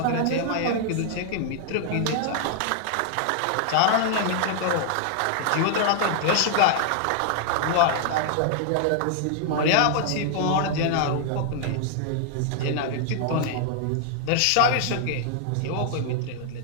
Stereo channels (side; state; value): both; different; correlation -0.01